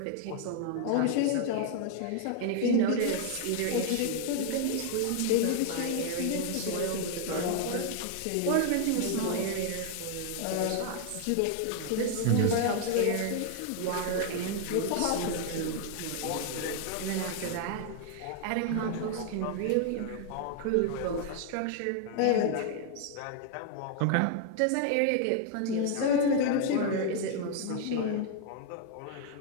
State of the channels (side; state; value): both; different; correlation 0.00